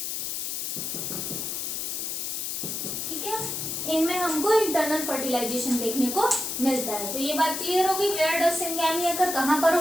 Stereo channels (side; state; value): left; noise; hiss, 3 dB below the sound